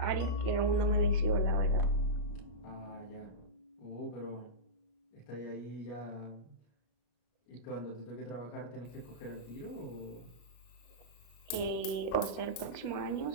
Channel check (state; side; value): late; right; 34 ms